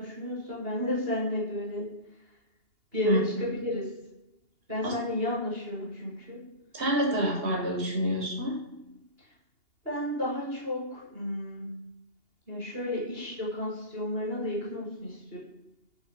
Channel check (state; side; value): late; left; 2.8 ms